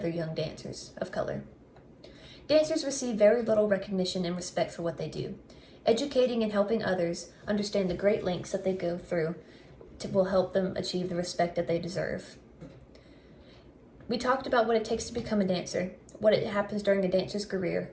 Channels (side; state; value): both; identical; correlation 1.00